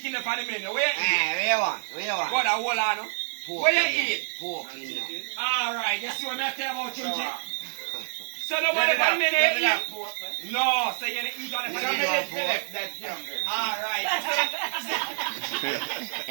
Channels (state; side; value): silent; left; 55 dB below the other